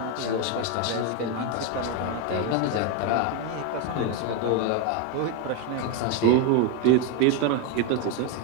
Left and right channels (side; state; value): both; different; correlation 0.02